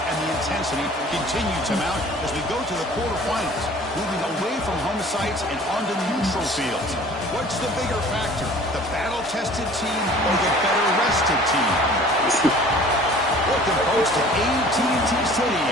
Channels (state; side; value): normal; both; correlation 0.48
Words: the intensity continue to mount as we go to the quarterfinals, moving away from home sites and onto neutral fields. What's the bigger factor, the battle-tested team or the better-rested team? Welcome, folks, to AT&T